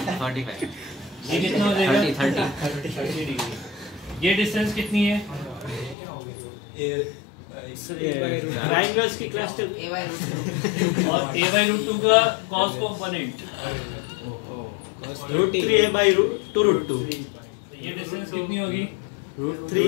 ये कितना हो जाएगा 30 डिग्री। ये डिस्टेंस कितनी है ट्रायंगल्स की क्लास टेबल A/√2 और A/√2 का cos कंपोनेंट √3A/√2 ये डिस्टेंस कितनी होगी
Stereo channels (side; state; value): right; drops out; at 6.0 s